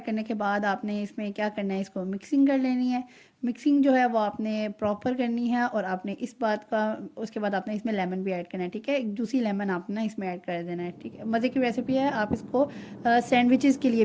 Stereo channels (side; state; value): both; identical; correlation 1.00